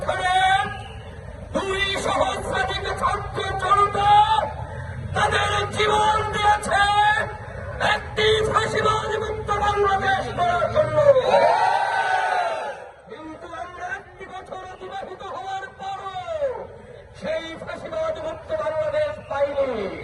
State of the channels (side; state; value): both; identical; correlation 1.00